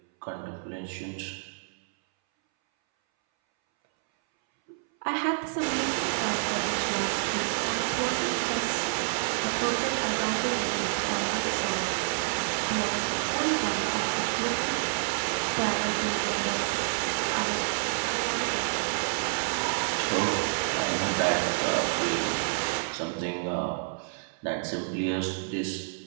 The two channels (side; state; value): left; silent; 59 dB below the other